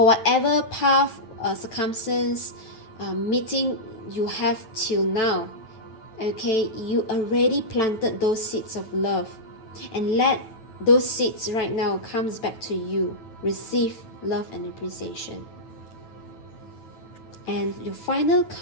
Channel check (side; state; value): right; late; 9.1 ms